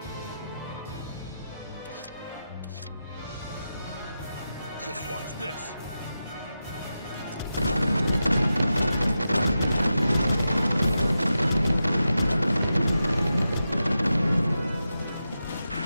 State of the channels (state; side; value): inverted; both; correlation -0.90